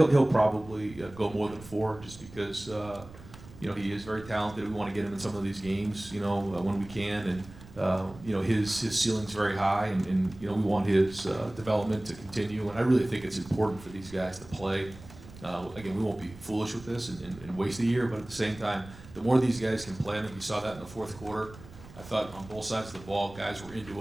He'll probably go more than 4, just because he is very talented. We want to get him in some of these games, when we can, You know, his ceiling's very high, and you know, we want his development to continue. And I really think it's important for these guys to play. Again, we won't be foolish with this and waste a year, but at the same time, the more these guys can play, I think we saw that in the fourth quarter. I thought on both sides of the ball, guys were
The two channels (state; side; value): noise; right; rumble, 18 dB below the sound